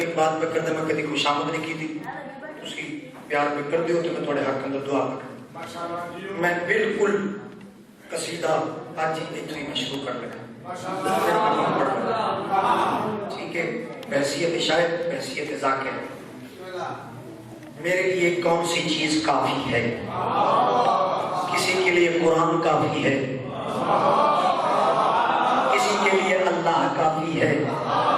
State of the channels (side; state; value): both; identical; correlation 1.00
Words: بات پہ کرتا میں کدی خوشامد نہیں کی تھی تسی پیار پہ کر دیو تو میں تھوڑے حق اندر دعا پہ میں بالکل قصیدہ آج ہی اتنی میں شروع کر لگا ٹھیک ہے بحثیت شاعر بحثیت ذاکر میرے لیے کون سی چیز کافی ہے کسی کے لیے قرآن کافی ہے کسی کے لیے اللہ کافی ہے